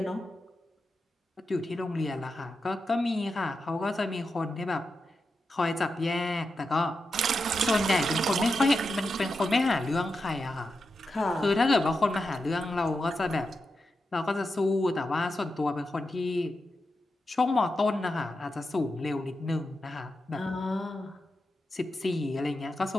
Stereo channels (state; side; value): normal; both; correlation 0.88